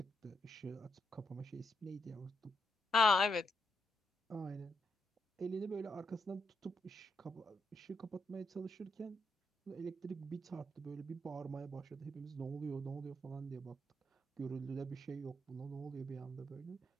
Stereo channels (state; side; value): normal; both; correlation 0.80